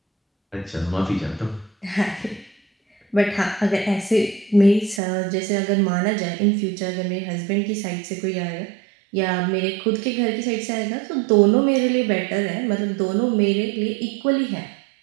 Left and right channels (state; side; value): drops out; left; at 5.0 s